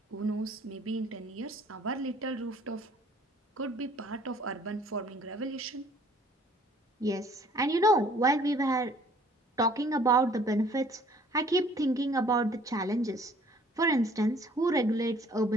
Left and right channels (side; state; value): both; normal; correlation 0.56